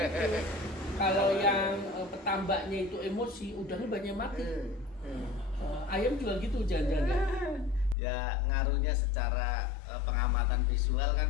kalau yang petambaknya itu emosi, udangnya banyak mati. Ayam juga gitu jangan-jangan. Ya ngaruhnya secara pengamatan visual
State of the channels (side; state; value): right; drops out; at 8.0 s